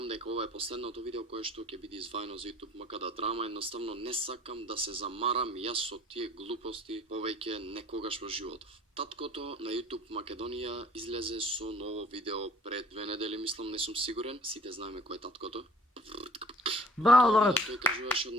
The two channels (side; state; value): both; normal; correlation 0.51